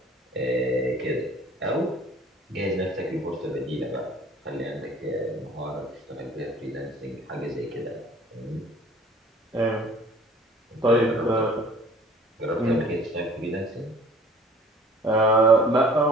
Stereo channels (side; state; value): both; normal; correlation 0.50